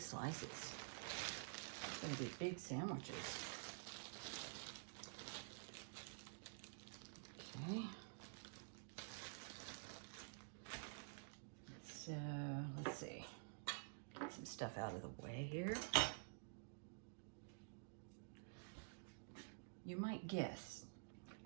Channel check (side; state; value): left; silent; digital silence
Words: slices. It's gonna be big sandwiches. Okay. So let's see. Get some stuff out of the way here. You might guess,